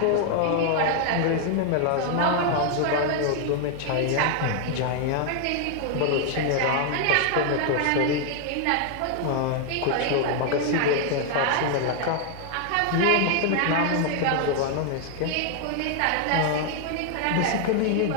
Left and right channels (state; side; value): different; both; correlation 0.00